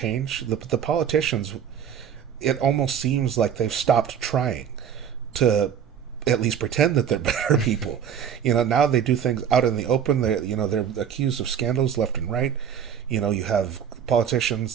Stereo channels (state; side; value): quieter; left; 8.3 dB